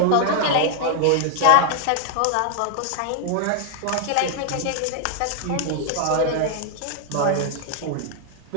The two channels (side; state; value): both; different; correlation 0.00